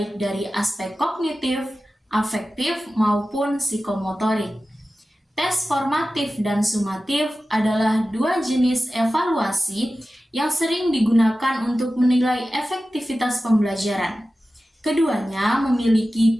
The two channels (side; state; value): both; normal; correlation 0.95